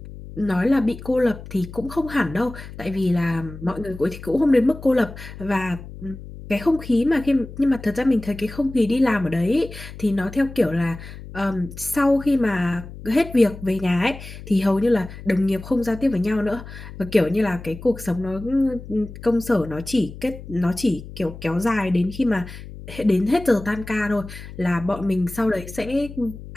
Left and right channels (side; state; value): left; noise; hum, 14 dB below the sound